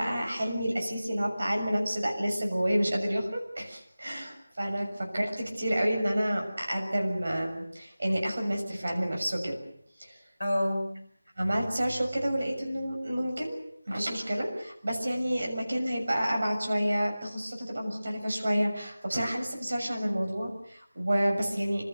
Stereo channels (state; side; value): inverted; both; correlation -0.96